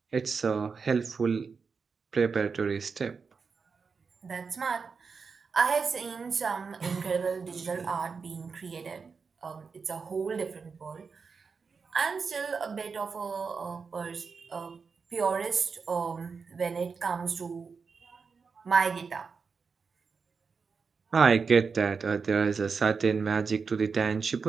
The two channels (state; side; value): quieter; left; 5.2 dB